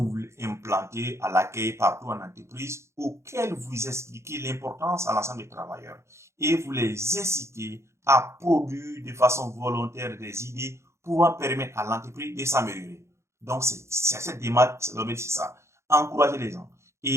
voulez implanter à l'accueil partout en entreprise, auxquelles vous expliquez l'importance à l'ensemble des travailleurs et vous les incitez à produire de façon volontaire des idées pouvant permettre à l'entreprise de s'améliorer. Donc, c'est cette démarche, c'est ça. Encourager les gens.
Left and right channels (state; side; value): late; left; 0.13 ms